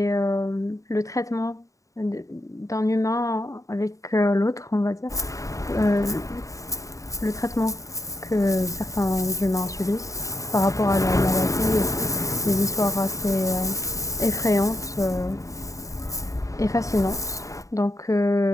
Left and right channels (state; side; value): late; right; 0.16 ms